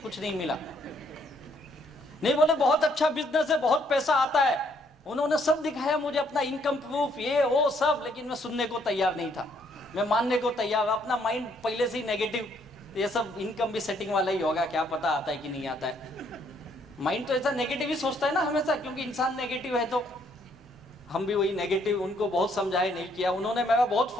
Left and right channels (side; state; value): both; normal; correlation 0.69